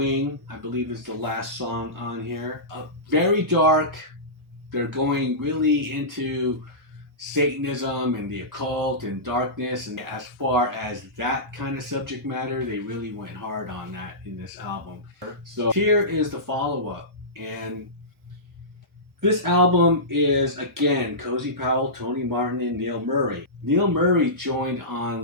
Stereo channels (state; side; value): normal; both; correlation -0.19